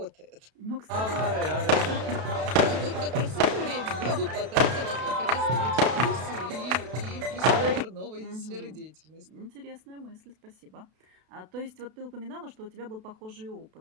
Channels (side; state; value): left; late; 32 ms